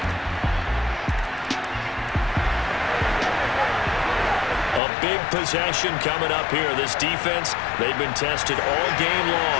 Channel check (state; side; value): drops out; right; at 4.8 s